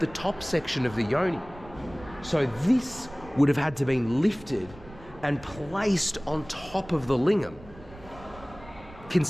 top section of the yoni. So this would have had to been lifted and placed on top of the lingam. Can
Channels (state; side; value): noise; right; rumble, 19 dB below the sound